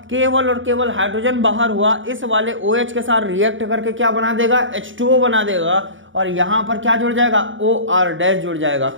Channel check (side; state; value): left; late; 0.56 ms